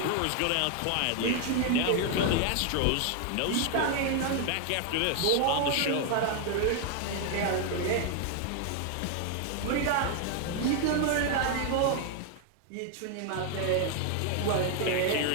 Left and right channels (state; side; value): different; both; correlation 0.00